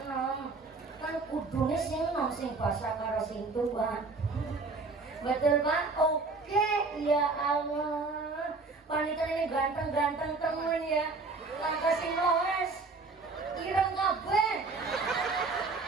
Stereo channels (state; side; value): quieter; left; 3.9 dB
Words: enom. Kan kudune sing enom sing basa karo sing tua. Betul Pak? Oke, ya Allah. Panitia ini ganteng-ganteng temen ya. Langkah sing loes. Ireng kabeh.